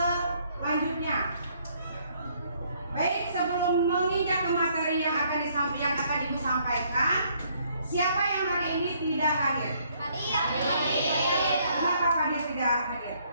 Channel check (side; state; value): both; inverted; correlation -0.66